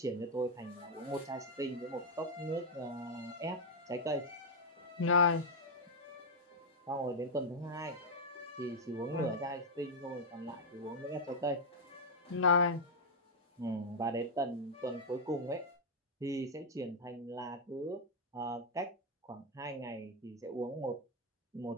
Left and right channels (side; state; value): both; normal; correlation -0.01